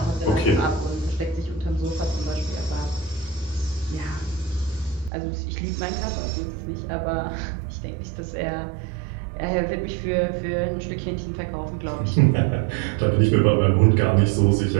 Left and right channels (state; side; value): drops out; left; at 5.1 s